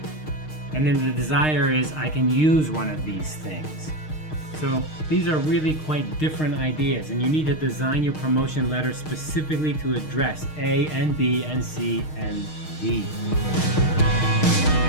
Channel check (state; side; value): late; right; 6.5 ms